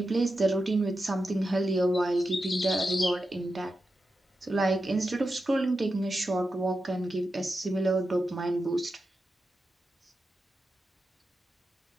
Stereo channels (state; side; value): normal; both; correlation 0.90